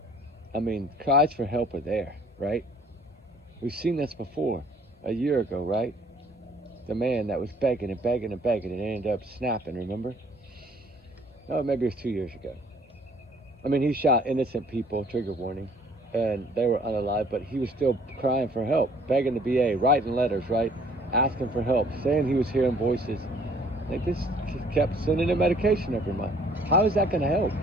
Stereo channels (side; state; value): both; normal; correlation 0.58